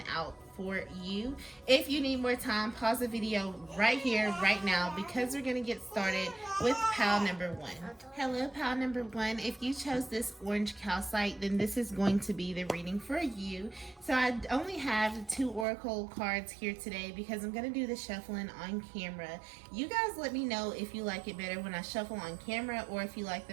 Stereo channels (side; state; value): left; drops out; at 15.7 s